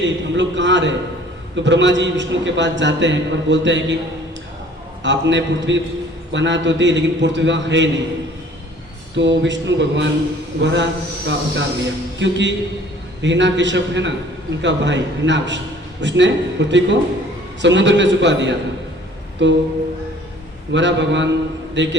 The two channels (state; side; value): normal; both; correlation 0.53